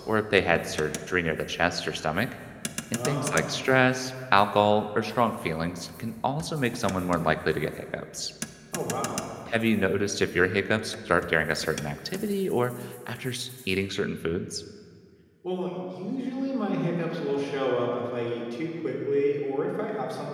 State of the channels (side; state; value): both; identical; correlation 1.00